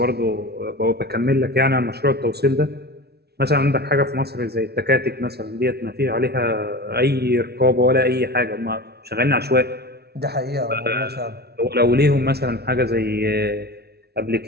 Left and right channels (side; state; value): left; late; 0.47 ms